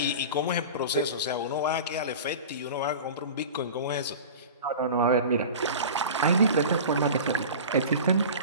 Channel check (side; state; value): both; inverted; correlation -0.34